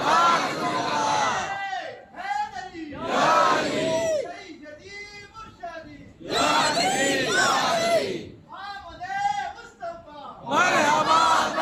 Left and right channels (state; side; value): identical; both; correlation 1.00